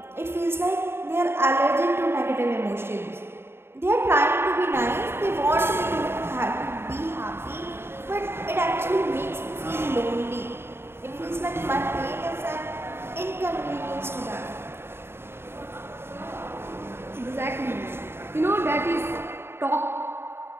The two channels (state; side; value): late; left; 0.11 ms